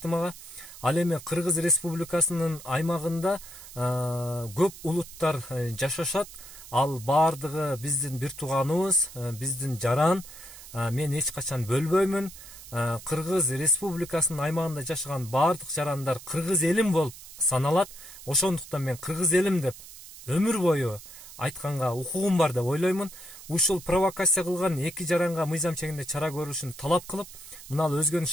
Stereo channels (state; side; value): noise; right; hiss, 16 dB below the sound